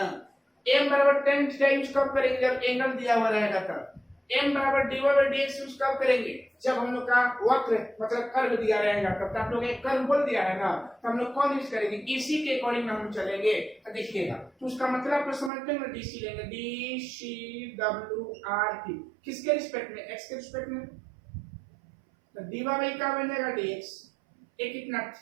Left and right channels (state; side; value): drops out; left; at 15.5 s